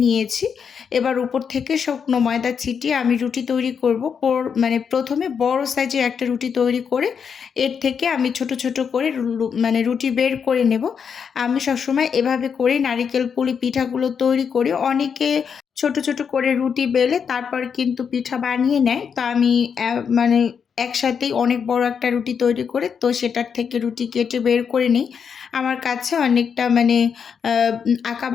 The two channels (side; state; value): right; quieter; 6.8 dB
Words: নিয়েছি। এবার উপর থেকে শুকনো ময়দা ছিটিয়ে আমি রুটি তৈরি করব। প্রথমে বড় সাইজের একটা রুটি তৈরি করে এর থেকে আমি ছোট ছোট করে রুটি বের করে নেব। আমি সবসময় এভাবে করে নারিকেল পুলি পিঠাগুলো তৈরি করি। অনেকে ছোট ছোট করে রুটি বেলে তারপর কিন্তু পিঠা বানিয়ে নেয়, তো আমি একসাথেই অনেক বড় একটা রুটি তৈরি করে তো সেটার থেকে রুটি কেটে বের করে নিই। আমার কাছে অনেকটা মানে